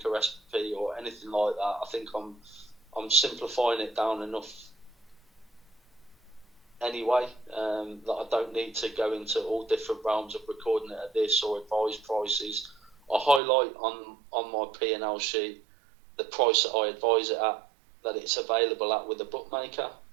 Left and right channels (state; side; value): drops out; left; at 13.4 s